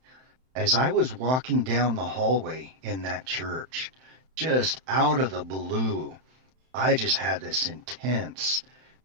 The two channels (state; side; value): late; left; 31 ms